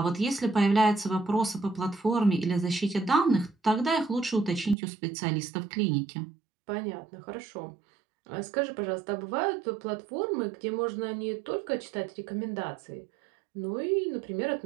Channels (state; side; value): drops out; left; at 4.8 s